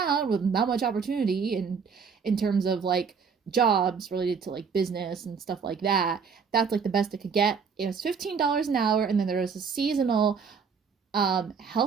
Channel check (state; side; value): quieter; left; 6.0 dB